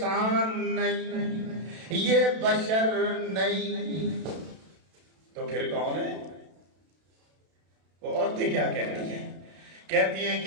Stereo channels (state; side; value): late; left; 32 ms